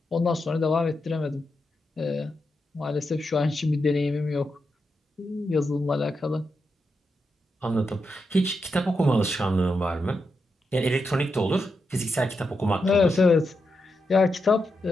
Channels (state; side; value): normal; both; correlation 0.85